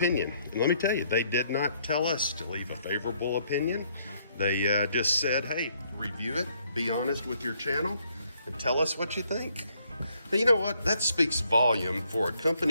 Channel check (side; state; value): both; inverted; correlation -0.70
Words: And let me tell you, they did not tell us to leave a favorable opinion. They just said, hey, review it, be honest with your channel, and tell us what you think. But you know what? That speaks volume for a